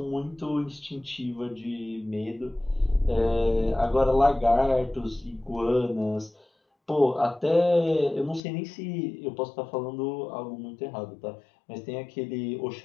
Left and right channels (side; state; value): right; drops out; at 8.4 s